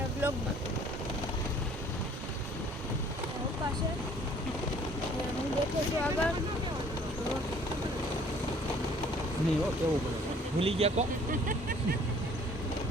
બ્લોગમાં. પપ્પા છે હું બેઠો છું આગળ. નહીં હો કેવું પડે ભૂલી ગયા કો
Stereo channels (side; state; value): both; normal; correlation 0.56